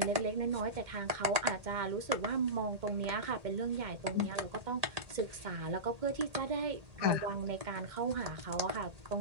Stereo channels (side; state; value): left; late; 1.8 ms